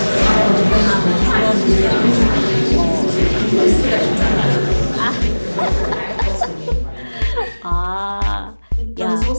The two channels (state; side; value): inverted; both; correlation -1.00